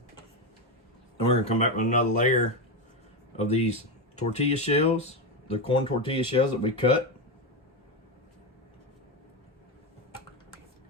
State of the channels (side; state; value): both; normal; correlation 0.11